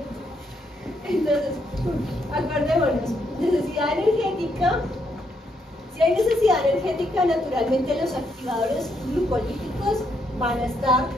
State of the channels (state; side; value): normal; both; correlation 0.76